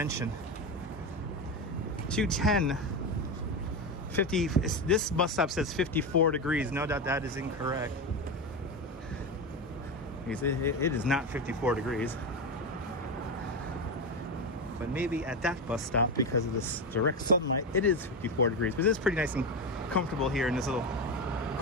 210 50. This bus stop says 54 degrees. No doubt that is incorrect. It is not 54 degrees. But maybe at that bus stop, because of this direct sunlight, it is 54 degrees. But it is pretty nice and comfortable here in this little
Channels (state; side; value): normal; both; correlation 0.16